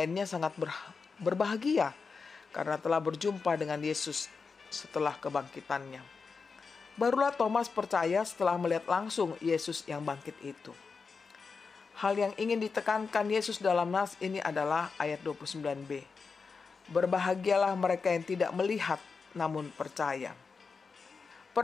sangat berbahagia karena telah berjumpa dengan Yesus setelah kebangkitannya. Barulah Thomas percaya setelah melihat langsung Yesus yang bangkit itu. Hal yang ingin ditekankan Yesus dalam nas ini adalah ayat 29b. Berbahagialah mereka yang tidak melihat namun percaya.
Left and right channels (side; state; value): right; quieter; 5.0 dB